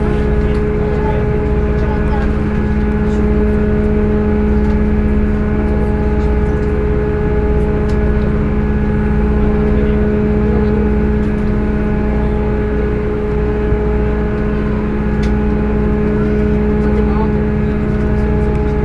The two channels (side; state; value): both; identical; correlation 1.00